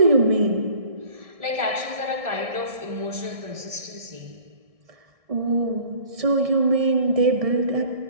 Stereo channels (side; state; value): left; late; 1.6 ms